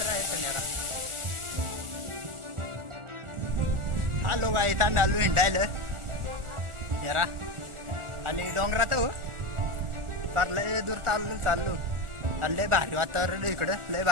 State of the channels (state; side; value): late; left; 1.4 ms